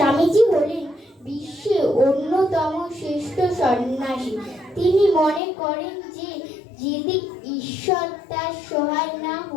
হলেন বিশ্বের অন্যতম শ্রেষ্ঠ সন্ন্যাসী। তিনি মনে করেন যে যদি ঈশ্বর তার সহায় না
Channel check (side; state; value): right; drops out; at 5.4 s